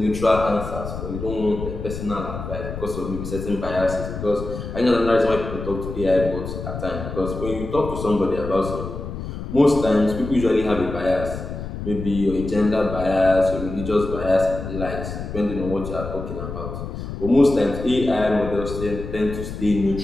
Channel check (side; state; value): left; noise; rumble, 7 dB below the sound